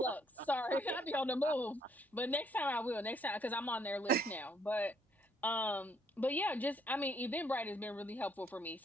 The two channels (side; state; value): both; normal; correlation 0.68